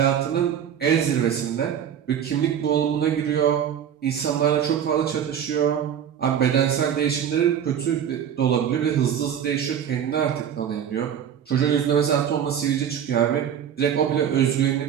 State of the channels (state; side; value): quieter; left; 8.9 dB